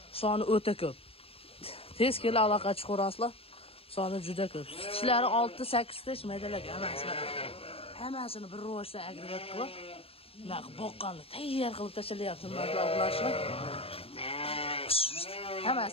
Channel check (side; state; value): right; late; 0.28 ms